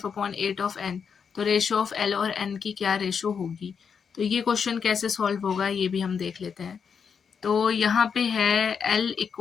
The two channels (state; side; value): quieter; right; 6.5 dB